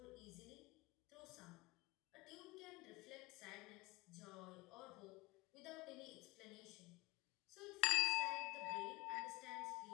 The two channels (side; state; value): right; quieter; 25.5 dB